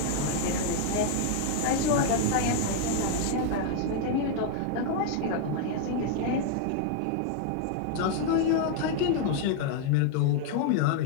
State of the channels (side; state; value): both; different; correlation 0.00